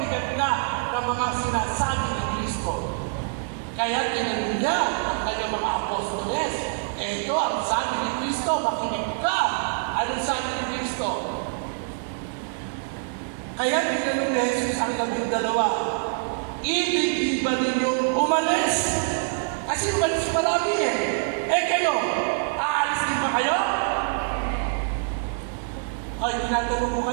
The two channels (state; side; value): silent; left; digital silence